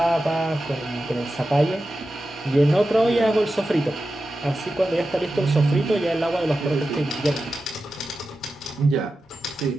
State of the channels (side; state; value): both; normal; correlation 0.92